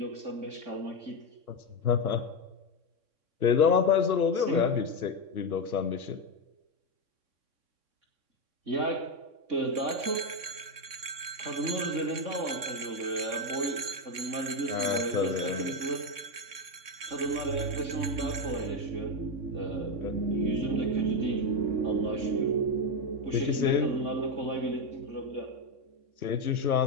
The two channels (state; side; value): late; left; 3.6 ms